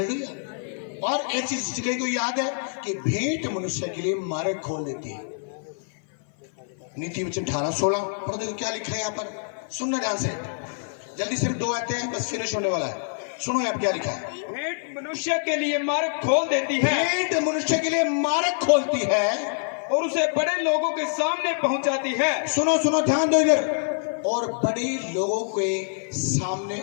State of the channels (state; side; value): silent; right; 56 dB below the other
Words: और एक चीज कहीं को याद है कि भेंट मनुष्य के लिए मार्ग खोल देती है। नीति वचन 18:16 पढ़ देखो क्या लिखा है यहाँ पर, सुनना ध्यान से, जल्दी सिर्फ 2 आते हैं, बस फिनिश होने वाला है। सुनो यहाँ क्या लिखा है। भेंट मनुष्य के लिए मार्ग खोल देती है, भेंट मनुष्य के लिए मार्ग खोलती है और उसे बड़े लोगों के सामने पहुंचाती है। सुनो सुनो ध्यान दो इधर, और बड़े लोगों के सामने